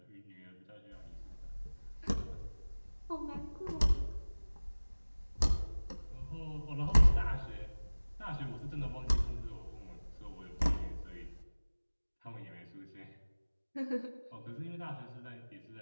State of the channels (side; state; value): both; inverted; correlation -1.00